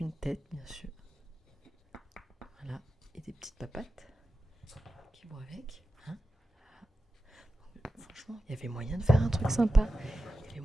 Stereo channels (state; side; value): normal; both; correlation 0.93